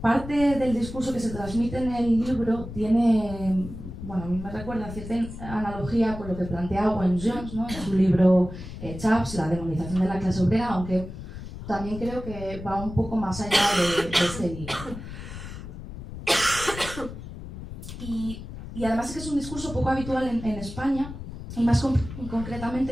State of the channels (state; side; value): noise; left; rumble, 11 dB below the sound